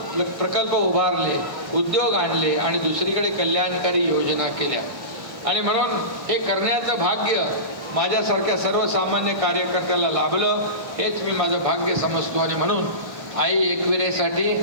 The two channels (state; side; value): late; left; 1.2 ms